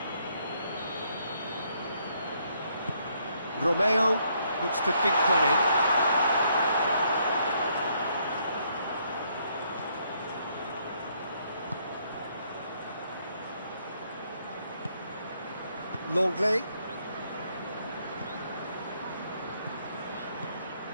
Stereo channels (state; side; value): inverted; both; correlation -0.71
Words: Romeo looks to dink one in. Longley.